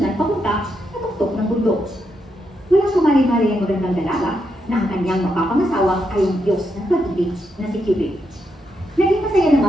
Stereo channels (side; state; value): both; normal; correlation 0.81